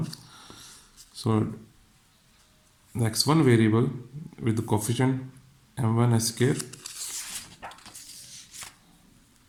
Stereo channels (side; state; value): both; identical; correlation 1.00